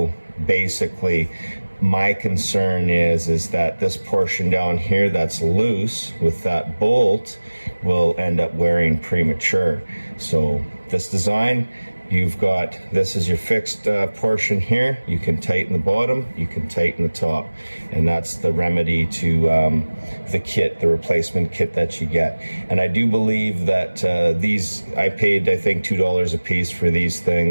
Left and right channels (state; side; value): inverted; both; correlation -1.00